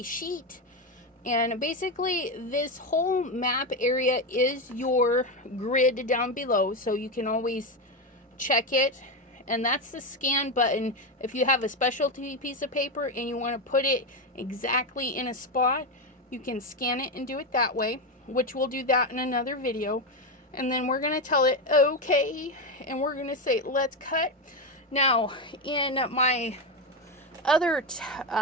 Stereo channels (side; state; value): both; normal; correlation 0.12